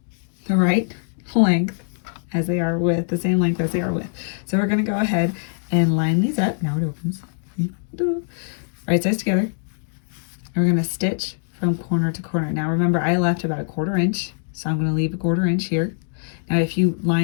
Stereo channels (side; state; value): right; silent; 64 dB below the other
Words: the right length as they are width, the same length as they are width. So we're going to go ahead and line these up. Now it opens. Right sides together. And we're going to stitch from corner to corner. Now remember, I left about 1/4 inch, so I'm going to leave a 1/4 inch here. Now if you